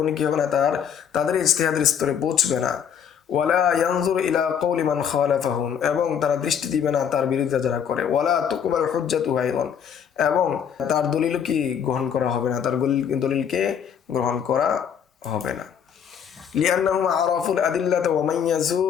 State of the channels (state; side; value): quieter; right; 8.0 dB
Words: কি হবে না, তাদের ইজতিহাদের স্তরে পৌঁছবে না। ওয়ালা ইয়ানজুর ইলা কওলি মান খালাফাহুম, এবং তারা দৃষ্টি দিবে না তার বিরোধিতা যারা করে। ওয়ালা তুকবাল হুজ্জাতু আইদান, এবং তার দলিল কি গ্রহণ করা হবে না, তার দলিলকে গ্রহণ করা হবে না। লিআন্নাহুম আরাফুল আদিল্লাতা ওয়া মাইয়াজু